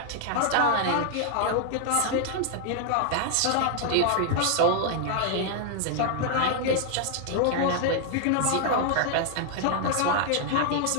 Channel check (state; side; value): different; both; correlation 0.00